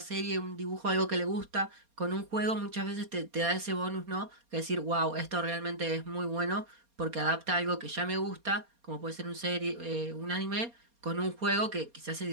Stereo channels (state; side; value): late; left; 4.2 ms